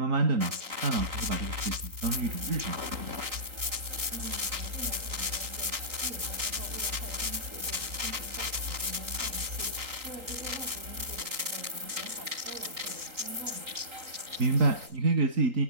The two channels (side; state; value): left; late; 3.8 ms